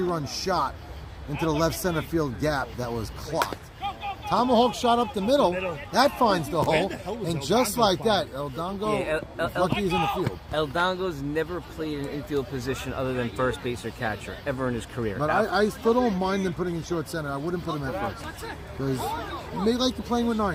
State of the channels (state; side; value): identical; both; correlation 1.00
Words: shot into the left center field gap that was clocked. Tomahawk shot up the middle. That finds the hole. the hell was And El just Dongo like find? that, El Dongo, Yeah, is lucky he's in the field. El Dongo's never played an infield position other than first base or catcher ever in his career. But I still don't mind them putting in short center. I wouldn't put him at first. Because they like to playing with